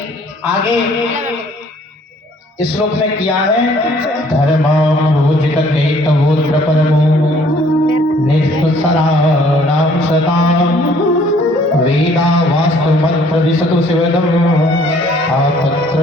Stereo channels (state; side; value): normal; both; correlation 0.59